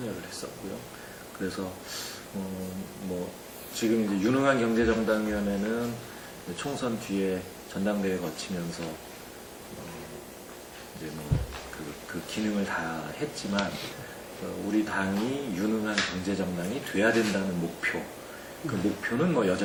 했었고요. 그래서 지금 이제 유능한 경제정당위원회는 총선 뒤에 전당대회 거치면서 이제 그 기능을 다 했지만 우리 당이 유능한 경제정당이 돼야 된다는 목표, 그 목표는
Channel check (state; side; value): identical; both; correlation 1.00